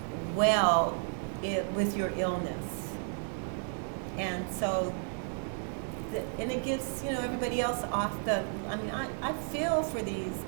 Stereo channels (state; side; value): silent; left; 56 dB below the other